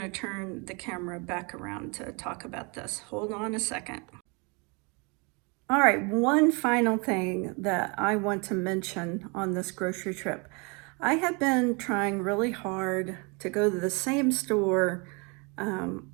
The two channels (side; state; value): left; quieter; 31.2 dB